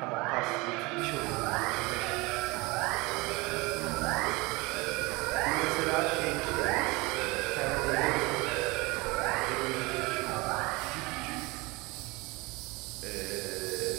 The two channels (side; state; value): left; quieter; 24.3 dB